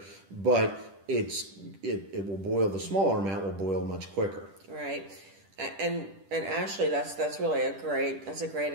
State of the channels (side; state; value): left; late; 10 ms